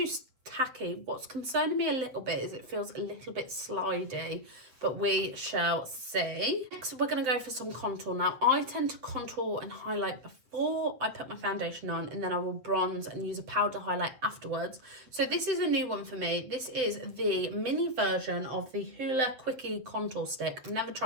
tacky. What's concerning me a little bit is it feels a little bit slidey, but we shall see. Next, we're going to go for some contour. Now, I tend to contour and highlight before I put my foundation on, and then I will bronze and use a powder highlight afterwards. So this is a new one for me. This is the mini version of the Hoola Quickie Contour Stick. I've never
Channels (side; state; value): left; late; 8.1 ms